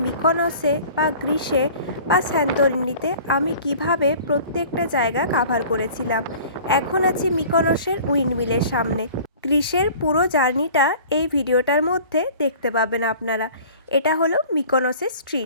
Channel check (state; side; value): inverted; both; correlation -0.45